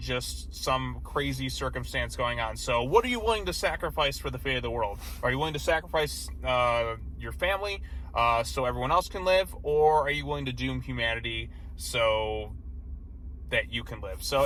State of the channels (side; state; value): both; identical; correlation 1.00